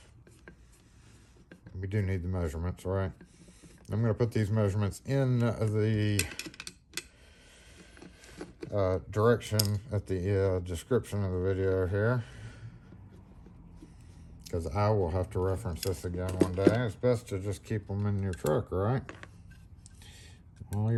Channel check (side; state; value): both; identical; correlation 1.00